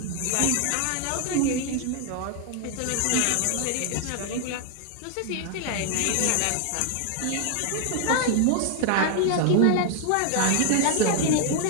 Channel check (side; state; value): both; different; correlation 0.00